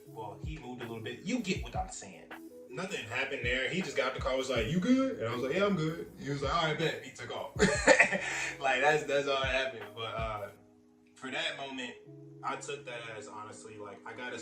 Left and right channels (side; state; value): both; identical; correlation 1.00